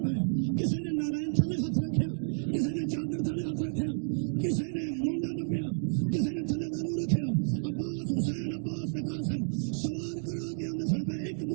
پے کسی نے نارائن تھلے ہاتھ رکھیا کسی نے چادر تھلے ہاتھ رکھیا کسی نے مونڈا نپیا کسی نے تھلے دانو رکھیا عباس حسین عباس تے قاسم سوار کرا کے آندے سن پے ایک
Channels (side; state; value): left; silent; digital silence